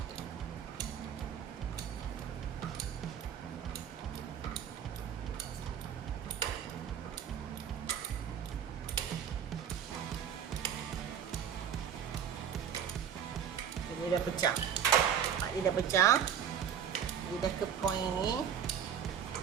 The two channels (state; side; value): quieter; left; 8.5 dB